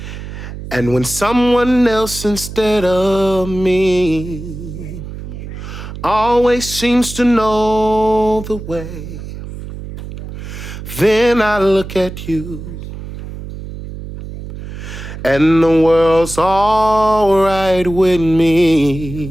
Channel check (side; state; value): right; noise; hum, 10 dB below the sound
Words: And when someone else instead of me always seems to know the way, then I look at you and the world's all right with